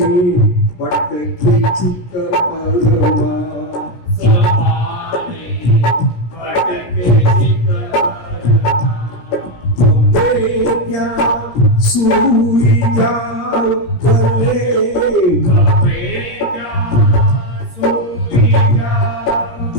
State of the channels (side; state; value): right; late; 17 ms